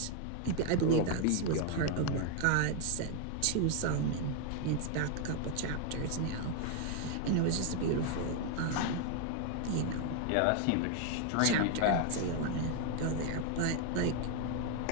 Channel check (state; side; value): different; both; correlation 0.01